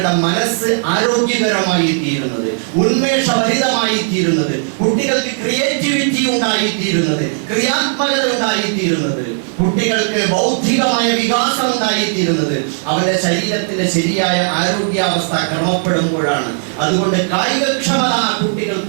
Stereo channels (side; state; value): left; silent; 63 dB below the other